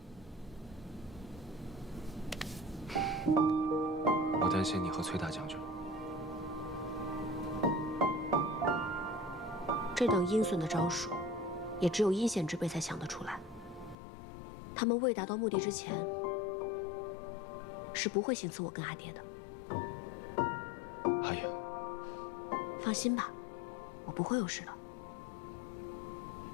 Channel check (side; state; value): right; drops out; at 14.0 s